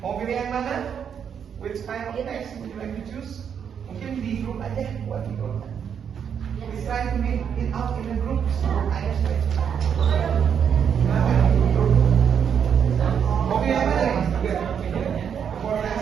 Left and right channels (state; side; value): quieter; left; 7.8 dB